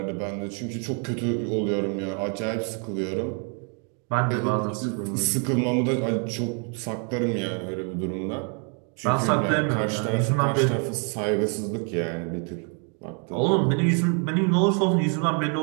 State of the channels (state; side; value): quieter; left; 39.9 dB